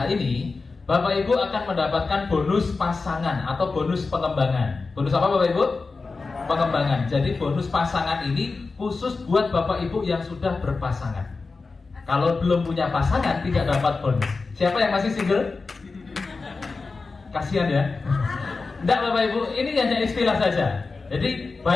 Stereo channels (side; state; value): right; quieter; 4.1 dB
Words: ini, Bapak Ibu akan mendapatkan bonus pasangan atau bonus pengembangan. Bonus apa Bapak Ibu? Pengembangan. Jadi bonus pasangan ini khusus buat Bapak Ibu yang sudah berpasangan. Kalau belum punya pasangan tidak dapat bonus. Siapa yang masih single? Kasihan ya. Enggak Bapak Ibu, ini hanya istilah saja. Jadi